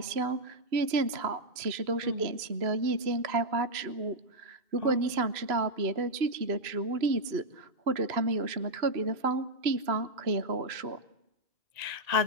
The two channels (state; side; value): late; left; 2.9 ms